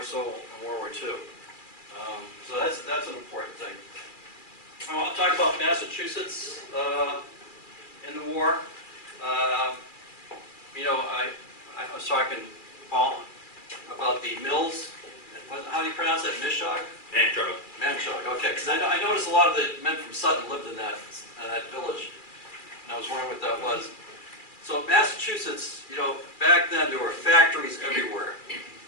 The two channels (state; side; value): late; right; 2.4 ms